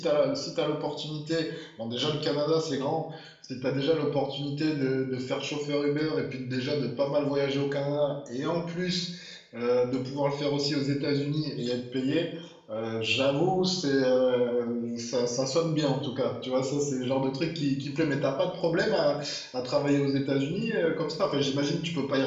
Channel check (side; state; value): both; identical; correlation 1.00